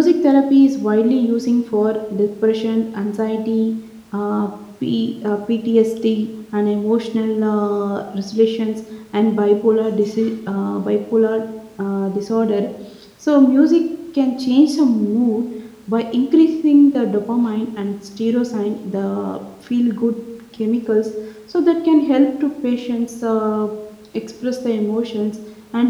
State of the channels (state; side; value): identical; both; correlation 1.00